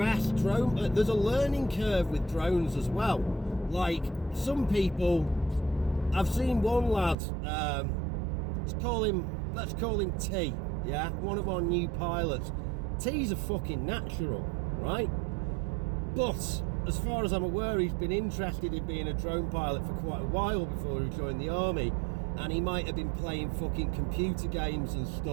drone, there's a learning curve with drones as well. Like, some people, I've seen one lad, let's call him T, yeah, one of our new pilots. T's a fucking natural, right? But as far as I'm aware, he's been interested in being a drone pilot for quite a while before he joined the army, and he might have been playing fucking computer games and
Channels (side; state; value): left; drops out; at 7.2 s